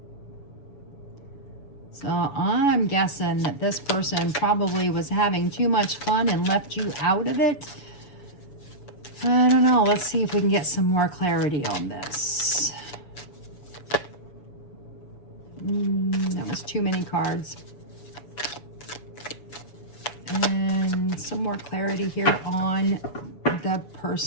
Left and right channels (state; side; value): late; right; 7.0 ms